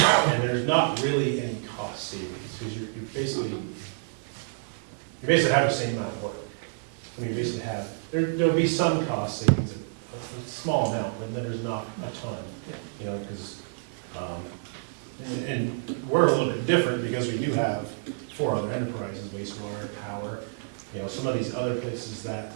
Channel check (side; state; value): left; silent; digital silence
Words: there's not really any cost savings, because you basically have the same amount of work. I mean, you basically have, there'll be some cost savings, a small amount, but then there's not a ton, you know, because, and we're a little bit different because we do have 4 other enterprises, wastewater, power, you know, some of these other places that,